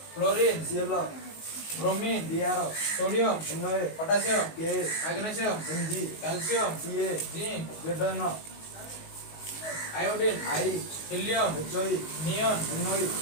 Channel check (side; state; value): right; late; 19 ms